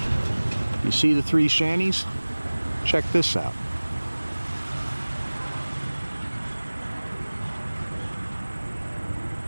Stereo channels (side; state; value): both; inverted; correlation -1.00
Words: you see the three shanties? Check this out.